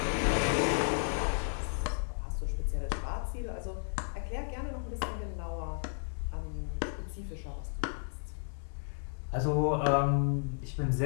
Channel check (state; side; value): silent; right; digital silence